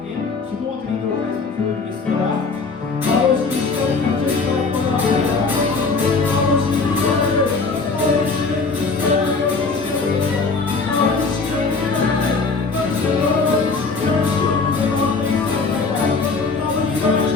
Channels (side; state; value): right; quieter; 4.3 dB